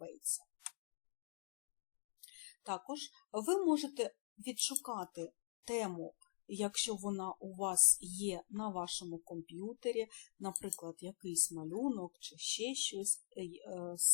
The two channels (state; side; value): silent; right; digital silence